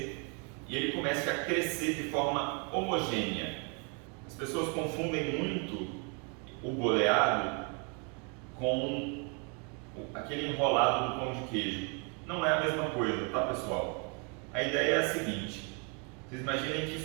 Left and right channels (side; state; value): left; quieter; 35.5 dB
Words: e ele comece a crescer de forma homogênea. As pessoas confundem muito o boleado com aquele enrolado do pão de queijo. Não é a mesma coisa, tá, pessoal? A ideia é a seguinte: vocês imaginem que